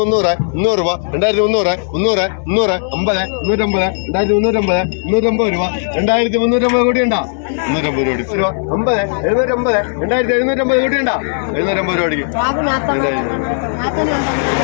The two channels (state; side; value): silent; right; digital silence